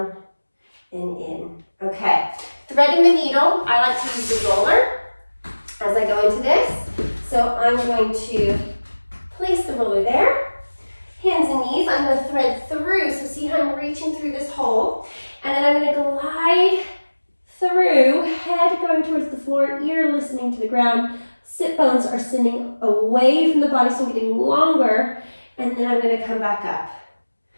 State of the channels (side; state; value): both; inverted; correlation -1.00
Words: and in. Okay. Threading the needle. I like to use the roller as I go into this. So I'm going to place the roller there. Hands and knees. I'm going to thread through. So see how I'm reaching through this hole. And then I'm going to glide through, head going towards the floor, ear listening to the ground. Sit bones are sitting away from the body, so I'm getting longer. And then I'm going to come back up.